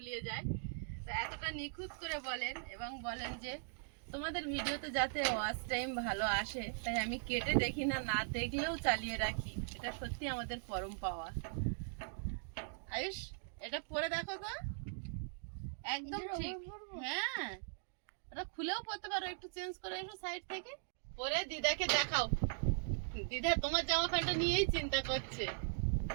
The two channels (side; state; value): left; silent; digital silence